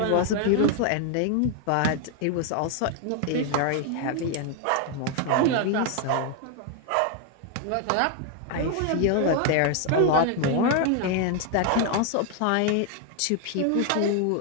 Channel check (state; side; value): different; both; correlation 0.00